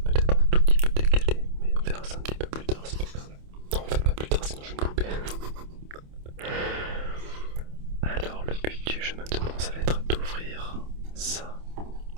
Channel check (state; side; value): late; left; 27 ms